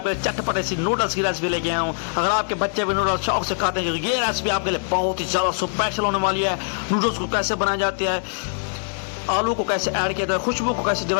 चटपटे सी नूडल्स की रेसिपी लेके आया हूँ। अगर आपके बच्चे भी नूडल्स शौक से खाते हैं तो ये रेसिपी आपके लिए बहुत ही ज़्यादा स्पेशल होने वाली है। नूडल्स को कैसे बनाया जाता है, आलू को कैसे ऐड किया जाता है, खुशबू को कैसे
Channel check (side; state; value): right; silent; digital silence